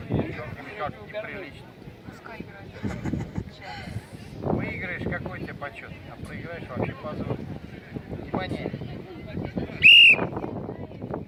Как неприлично. Пускай играет. Выиграешь, какой тебе почет, а проиграешь вообще позор. Внимание.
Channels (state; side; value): identical; both; correlation 1.00